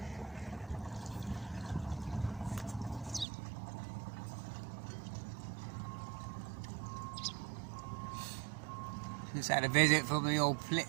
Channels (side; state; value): left; drops out; at 3.2 s